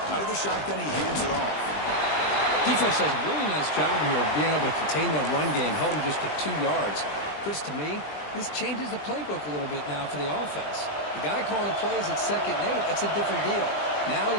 Out of the shotgun, he hands it off. Defense does a really nice job here of being able to contain that run game, held him just to 2 yards. Chris, to me, this changes the playbook a little bit now for the offense. The guy calling the plays at 2nd and 8, that's a different deal. Now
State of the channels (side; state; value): right; late; 20 ms